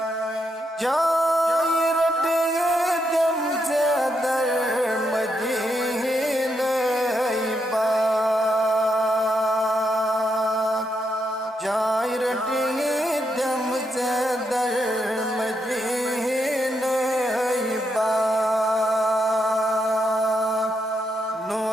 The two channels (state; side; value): normal; both; correlation 0.81